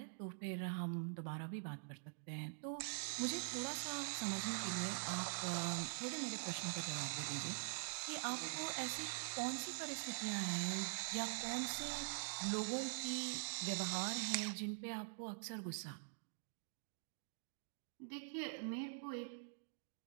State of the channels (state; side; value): silent; left; digital silence